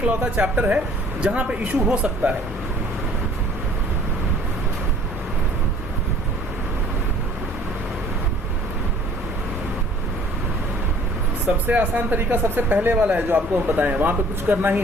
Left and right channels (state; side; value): normal; both; correlation 0.53